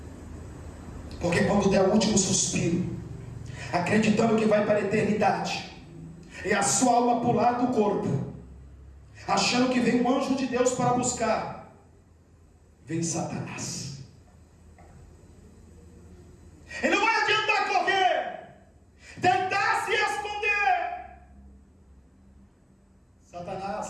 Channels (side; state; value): both; identical; correlation 1.00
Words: Porque quando der o último suspiro, acreditando que vai para a eternidade, e a sua alma pular do corpo, achando que vem um anjo de Deus para buscar, vem Satanás. E não vai adiantar correr, tentar se esconder.